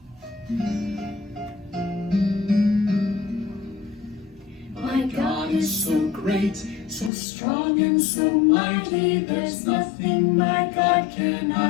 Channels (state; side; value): drops out; right; at 7.1 s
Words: My God is so great, so strong and so mighty, there's nothing my God